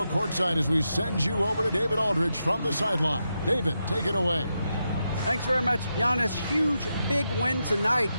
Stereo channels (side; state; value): both; inverted; correlation -0.86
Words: courtside as we send you over to David Aldridge from the sideline. David, take it away. Thanks very much, Giannis. Huge, big win tonight.